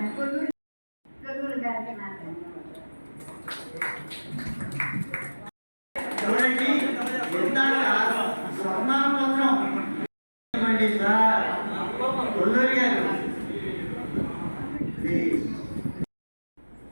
కొల్లూరు గారికి నా ధన్యవాదాలు. చూడండి, స్వర్ణాపత్రం సార్ కొల్లూరు గారు.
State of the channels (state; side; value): inverted; both; correlation -1.00